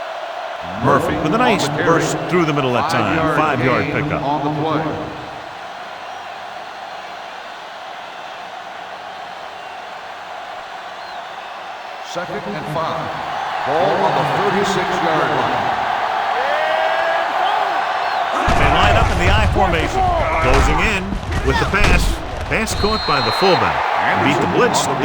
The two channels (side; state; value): both; identical; correlation 1.00